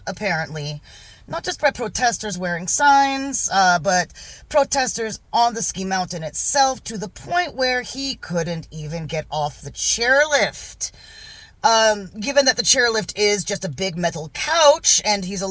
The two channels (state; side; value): identical; both; correlation 1.00